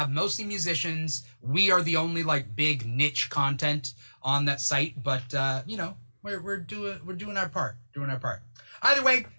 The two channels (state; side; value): inverted; both; correlation -1.00